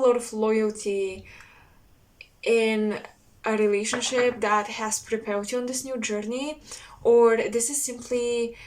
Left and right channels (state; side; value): identical; both; correlation 1.00